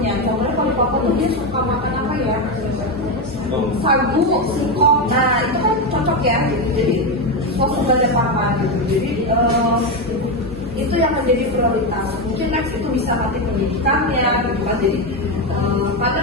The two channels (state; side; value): normal; both; correlation 0.11